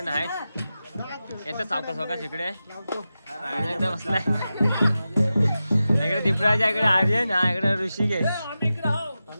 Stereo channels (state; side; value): inverted; both; correlation -0.93